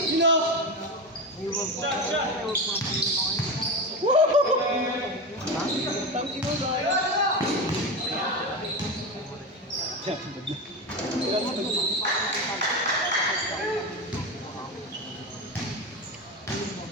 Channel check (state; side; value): normal; both; correlation 0.19